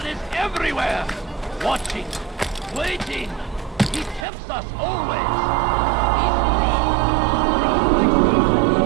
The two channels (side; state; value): left; drops out; at 4.2 s